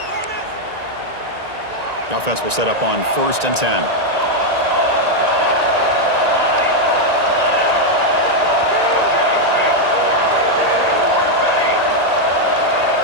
The offense will set up on 1st and 10.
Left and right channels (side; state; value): left; late; 1.9 ms